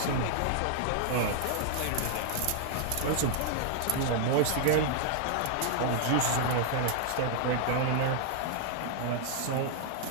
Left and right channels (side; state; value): both; different; correlation 0.00